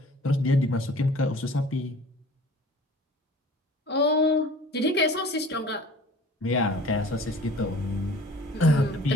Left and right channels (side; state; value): both; normal; correlation 0.46